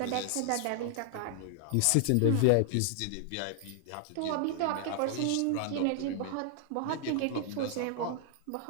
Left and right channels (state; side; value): different; both; correlation 0.00